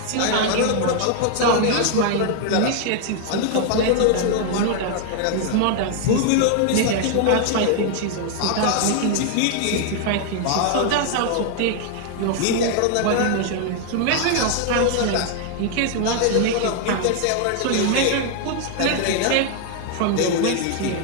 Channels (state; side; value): different; both; correlation 0.00